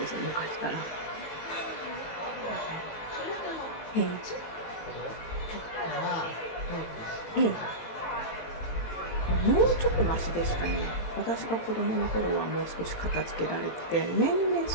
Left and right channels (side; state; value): right; late; 18 ms